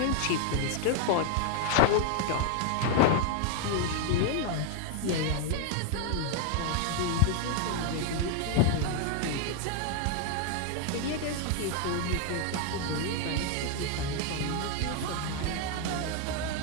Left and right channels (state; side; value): different; both; correlation 0.00